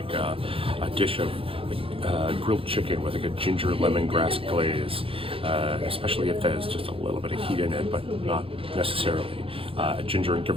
a dish of grilled chicken with like a ginger lemongrass glaze, especially if there's just a little bit of heat in it, but not necessarily. Ginger and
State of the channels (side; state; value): left; late; 0.27 ms